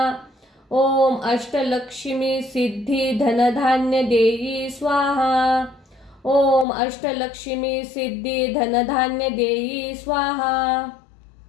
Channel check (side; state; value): right; drops out; at 6.7 s